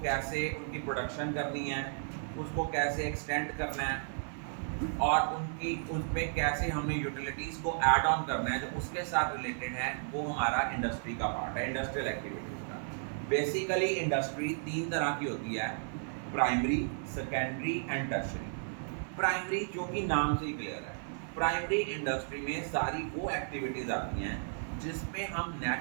कैसे उनकी प्रोडक्शन करनी है, उसको कैसे एक्सटेंड करना है और उनकी उसमें कैसे हमने यूटिलिटीज़ को ऐड ऑन करना है, जो उसके साथ रिलेटेड है, वो हमारा इंडस्ट्री का पार्ट है, इंडस्ट्रियल एक्टिविटीज़ का। बेसिकली इंडस्ट्री तीन तरह की होती है: primary, secondary and tertiary. Primary जो कि नाम से ही क्लियर है, प्राइमरी इंडस्ट्री में सारी वो एक्टिविटीज़ आती हैं जिसमें हम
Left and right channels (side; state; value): left; silent; 55 dB below the other